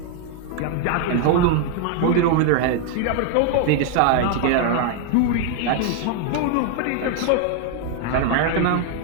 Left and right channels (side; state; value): both; different; correlation 0.00